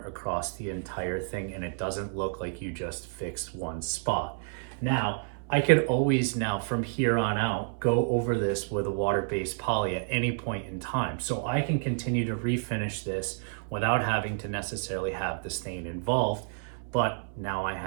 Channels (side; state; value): left; silent; 58 dB below the other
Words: across the entire thing and it doesn't look like you just fixed one spot. Now, I could always now from here on out go over this with a water-based poly at any point in time. So I can continue to refinish this without having to necessarily have the stain involved, but now I